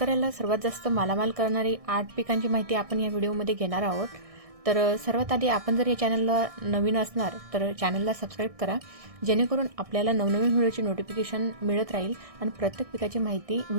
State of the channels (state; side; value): late; left; 1.6 ms